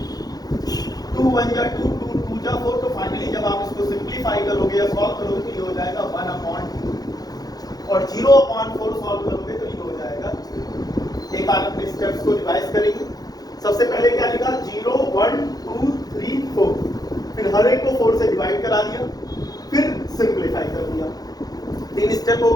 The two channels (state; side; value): late; right; 0.19 ms